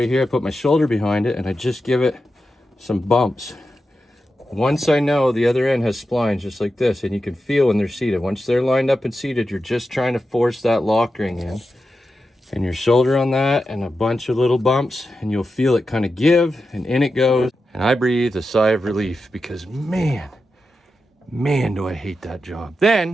here, I put my shoulder behind it, and I just give it some bumps. Once I know the other end has splines just like this, and you can feel when they're seated. Once they're lined up and seated, you're just trying to force that lock ring in. And your shoulder on that, and a bunch of little bumps, and you'll feel it kind of give, and in it goes. And I breathe a sigh of relief because man, do I hate that job.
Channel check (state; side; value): normal; both; correlation 0.90